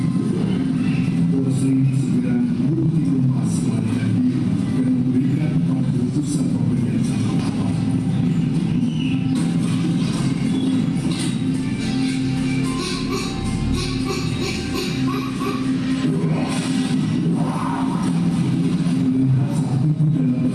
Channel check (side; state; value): both; identical; correlation 1.00